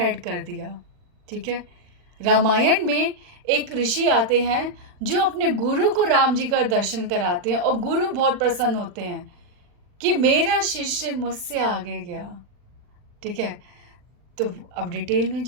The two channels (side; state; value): left; late; 39 ms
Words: कर दिया, ठीक है। रामायण में एक ऋषि आते हैं जो अपने गुरु को राम जी का दर्शन कराते हैं और गुरु बहुत प्रसन्न होते हैं कि मेरा शिष्य मुझसे आगे गया, ठीक है। तो अब डिटेल में